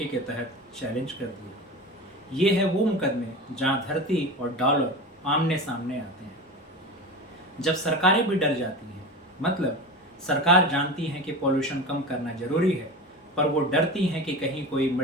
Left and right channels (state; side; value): normal; both; correlation 0.29